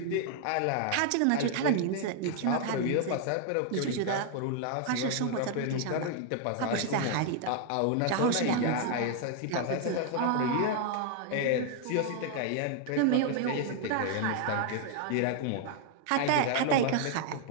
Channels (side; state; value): both; different; correlation 0.00